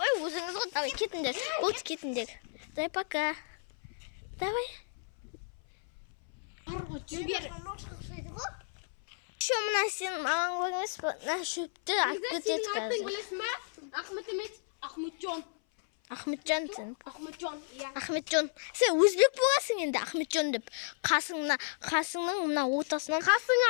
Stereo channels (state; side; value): silent; right; 56 dB below the other